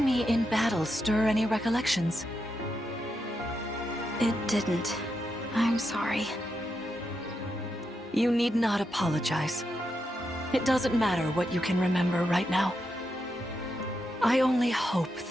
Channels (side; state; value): both; normal; correlation 0.84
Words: me in battle stir any recollections? It didn't. I'm sorry. You need not apologize. It doesn't matter what you can remember right now. I only hope